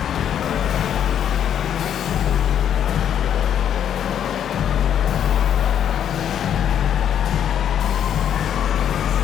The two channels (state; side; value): quieter; right; 9.4 dB